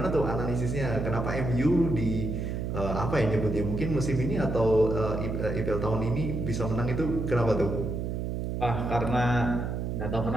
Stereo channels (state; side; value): noise; right; hum, 3 dB below the sound